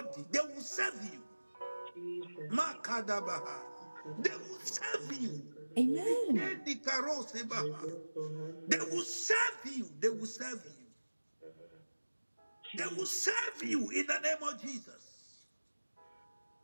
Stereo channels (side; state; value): both; inverted; correlation -1.00